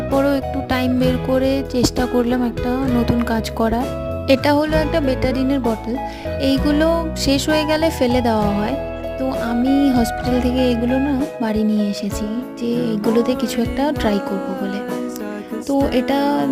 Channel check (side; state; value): both; identical; correlation 1.00